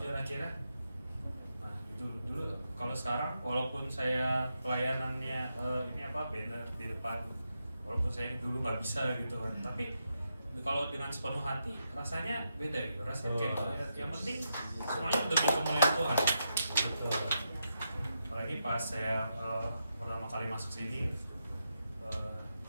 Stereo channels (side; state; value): both; inverted; correlation -0.84